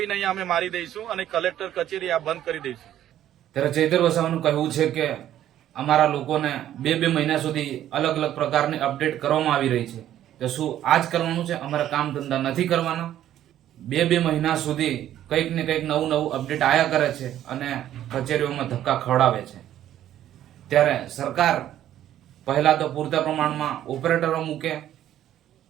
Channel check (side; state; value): left; quieter; 11.8 dB